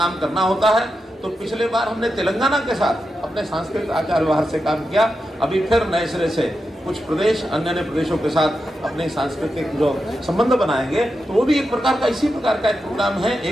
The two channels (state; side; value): normal; both; correlation 0.88